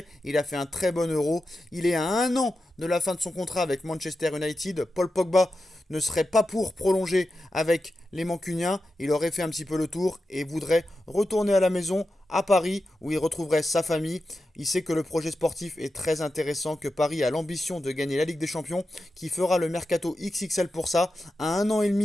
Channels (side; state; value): both; normal; correlation 0.90